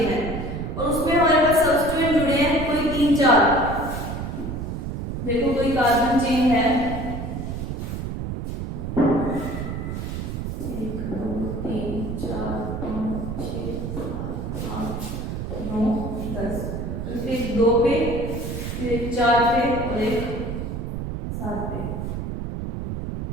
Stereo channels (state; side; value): noise; right; rumble, 4 dB below the sound